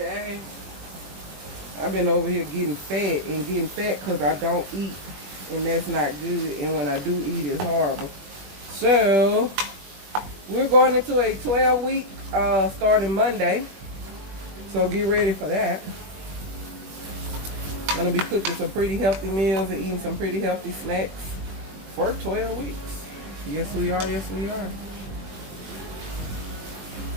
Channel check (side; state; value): left; late; 21 ms